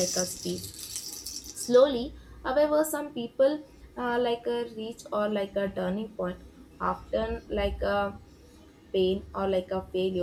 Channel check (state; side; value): identical; both; correlation 1.00